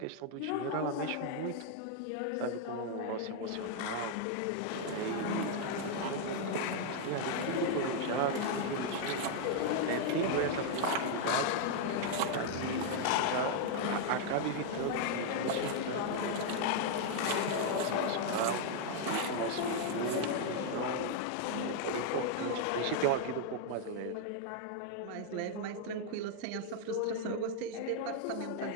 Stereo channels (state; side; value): different; both; correlation 0.00